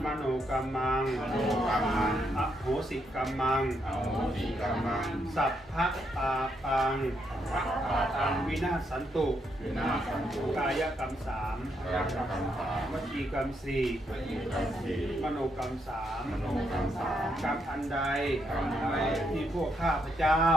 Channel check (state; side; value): normal; both; correlation 0.77